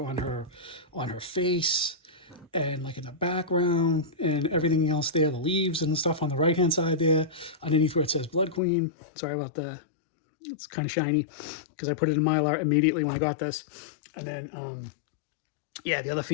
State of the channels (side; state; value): right; drops out; at 8.6 s